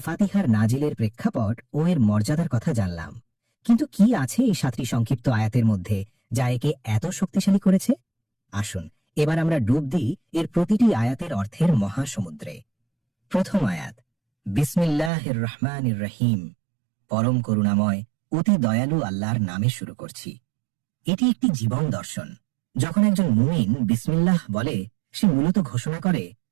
ফাতিহার নাজিলের প্রেক্ষাপট ও এর মর্যাদার কথা জানলাম, কিন্তু কি আছে এই 7টি সংক্ষিপ্ত আয়াতের মধ্যে যা একে এত শক্তিশালী করেছে? আসুন এবার আমরা ডুব দিই এর প্রতিটি আয়াতের অর্থের মহাসমুদ্রে। প্রথম আয়াত, বিসমিল্লাহির রহমানির রহিম, পরম করুণাময় অতি দয়ালু আল্লাহর নামে শুরু করছি। এটি একটি জীবন দর্শন। যখন একজন মুমিন বিসমিল্লাহ বলে, সে মূলত ঘোষণা করে,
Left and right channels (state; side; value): drops out; left; at 15.1 s